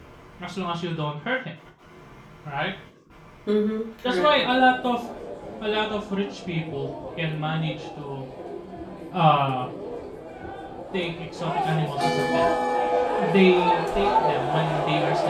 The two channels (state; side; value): identical; both; correlation 1.00